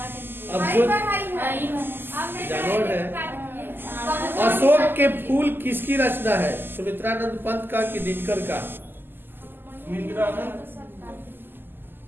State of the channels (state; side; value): late; left; 0.095 ms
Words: अब जो जानवर है। अशोक के फूल किसकी रचना है? सुमित्रानंद पंत का कि दिनकर का?